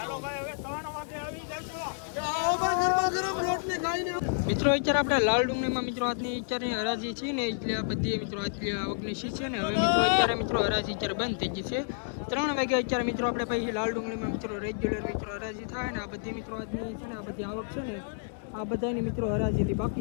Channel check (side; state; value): right; silent; digital silence